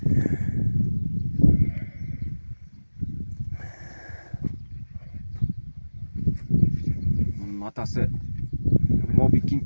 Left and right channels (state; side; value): inverted; both; correlation -1.00